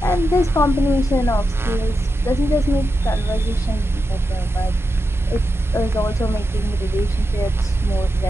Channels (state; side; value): normal; both; correlation 0.88